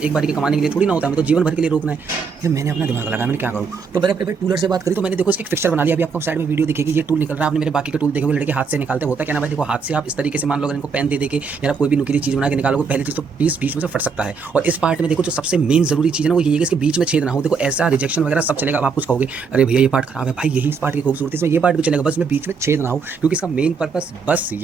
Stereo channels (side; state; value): left; quieter; 5.3 dB